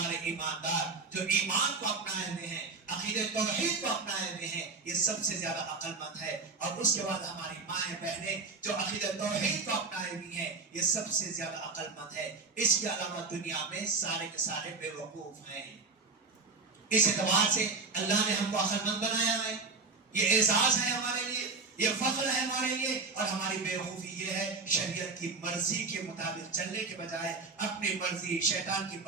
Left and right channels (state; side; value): quieter; left; 4.1 dB